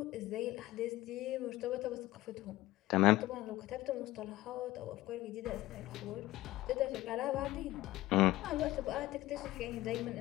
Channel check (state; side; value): quieter; right; 16.9 dB